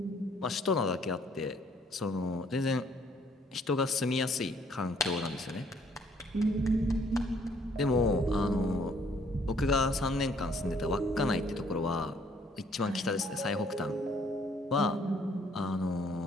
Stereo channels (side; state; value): both; normal; correlation 0.63